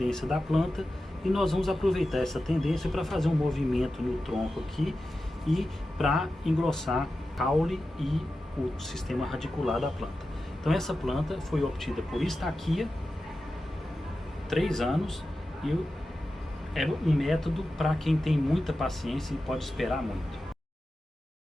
da planta. E nós vamos aproveitar essa tendência para fazer um movimento no tronco aqui e para engrossar o caule e o sistema radicular da planta. Então essa planta foi obtida por estaquia, 3 anos, e é um método para quem tem muita paciência e pode esperar muito.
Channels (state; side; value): normal; both; correlation 0.93